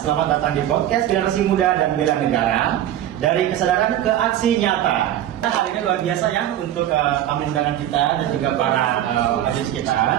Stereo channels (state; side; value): quieter; left; 11.9 dB